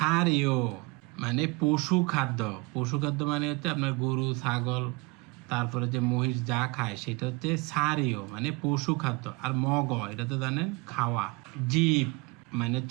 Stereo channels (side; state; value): left; quieter; 27.3 dB